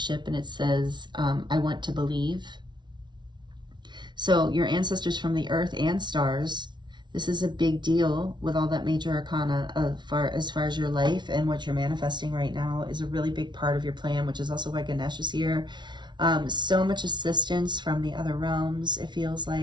and it says, I want to believe. So your ancestors from the earth and stars, this is a big deal with all that major arcana as far as your life and what you're manifesting right now is a really big part of your plan, which is also why Ganesh is here. So much assistance from the other realms, it feels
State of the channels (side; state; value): left; late; 0.22 ms